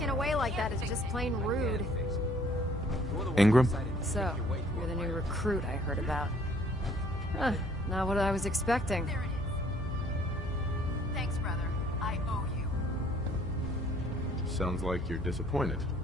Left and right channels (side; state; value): both; normal; correlation 0.59